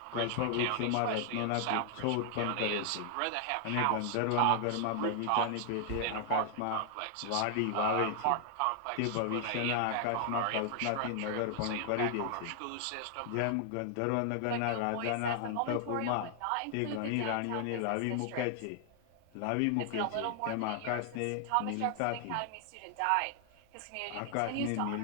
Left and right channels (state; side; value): different; both; correlation 0.00